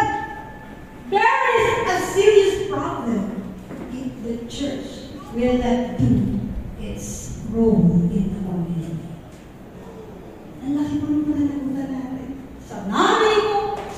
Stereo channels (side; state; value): both; identical; correlation 1.00